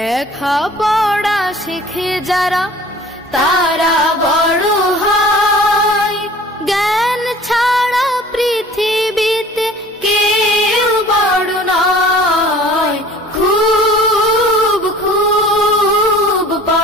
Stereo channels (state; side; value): normal; both; correlation 0.47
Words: পড়া শিখে যারা তারা বড় হয়, জ্ঞান ছাড়া পৃথিবীতে কেউ বড় নয়। খুব খুব